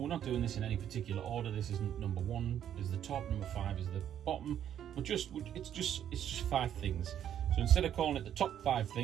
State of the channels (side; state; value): left; quieter; 10.0 dB